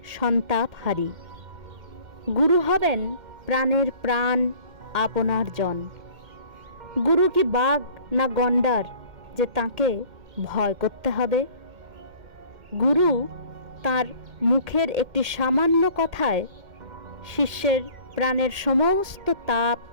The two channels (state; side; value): late; left; 2.1 ms